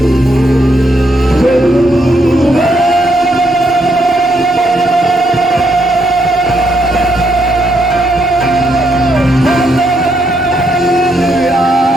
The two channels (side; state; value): both; normal; correlation 0.76